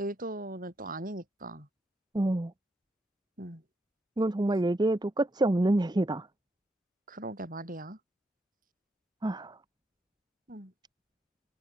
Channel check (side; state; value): both; normal; correlation 0.80